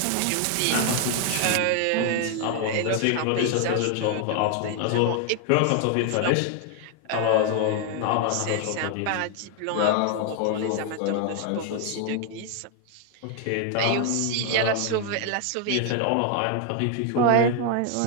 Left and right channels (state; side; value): different; both; correlation 0.00